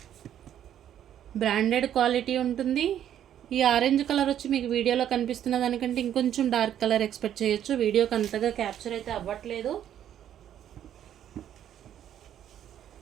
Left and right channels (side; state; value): left; quieter; 10.4 dB